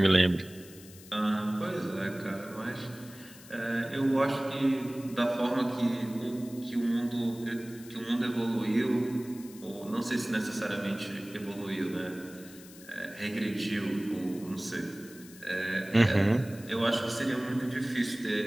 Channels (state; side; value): noise; left; hiss, 19 dB below the sound